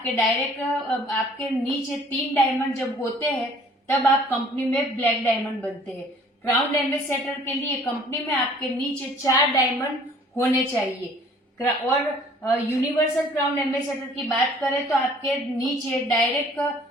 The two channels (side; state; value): both; normal; correlation 0.54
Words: डायरेक्ट आपके नीचे 3 डायमंड जब होते हैं तब आप कंपनी में ब्लैक डायमंड बनते हैं। क्राउन एम्बेसडर के लिए कंपनी में आपके नीचे 4 डायमंड होने चाहिए और यूनिवर्सल क्राउन एम्बेसडर की बात करें तो आपके नीचे डायरेक्ट